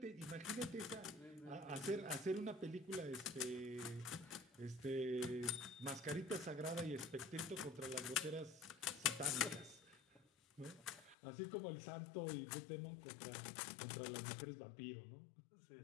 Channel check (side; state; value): right; drops out; at 11.2 s